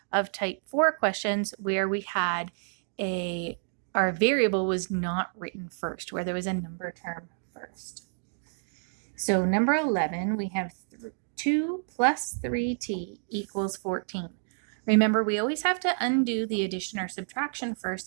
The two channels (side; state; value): left; silent; digital silence